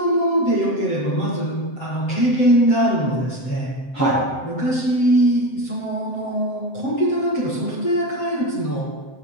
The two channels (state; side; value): late; right; 7.7 ms